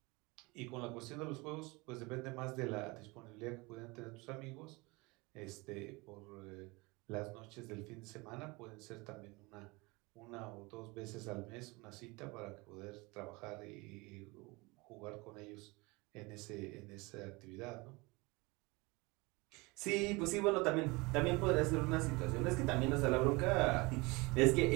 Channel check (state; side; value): quieter; left; 25.1 dB